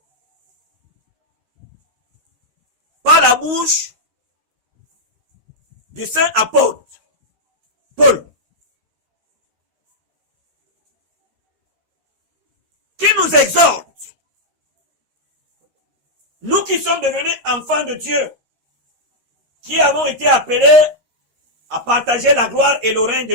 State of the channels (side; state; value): left; late; 13 ms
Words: par la bouche du saint apôtre Paul, qui nous exhorte, nous qui sommes devenus enfants de Dieu, qui avons été appelés à partager la gloire et le règne